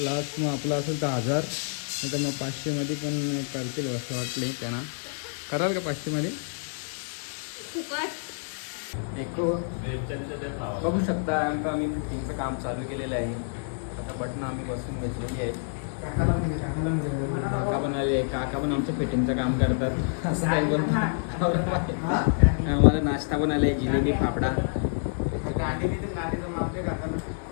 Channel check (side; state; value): right; silent; digital silence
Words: लास्ट मग आपलं असेल तर 1000, नाही तर मग 500मध्ये पण करतील असं वाटले त्यांना. कराल का 500मध्ये? बघू शकता आम्ही फिटिंगचं काम चालू केलेलं आहे. आता बटन आम्ही बसून घेतलेली आहे. काका पण आले. काका पण आमचं फिटिंगचं काम करतात असं काही बोलतात. आम्हाला नाश्ता पण आलाय, जिलेबी फाफडा.